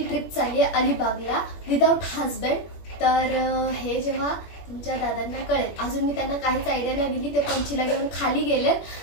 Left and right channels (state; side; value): late; right; 21 ms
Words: ट्रिप चालली आहे अलिबागला विदाउट हजबंड. तर हे जेव्हा तुमच्या दादांना कळेल, अजून मी त्यांना काहीच आयडिया नाही दिली, ते पंचीला घेऊन खाली